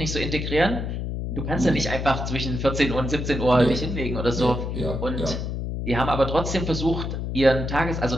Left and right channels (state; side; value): noise; left; hum, 3 dB below the sound